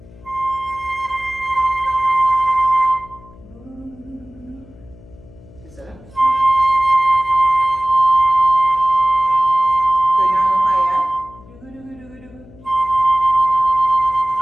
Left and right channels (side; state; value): left; noise; hum, 23 dB below the sound